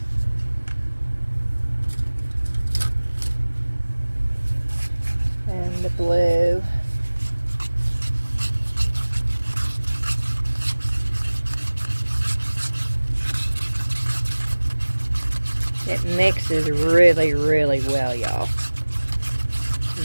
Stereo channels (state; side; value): inverted; both; correlation -1.00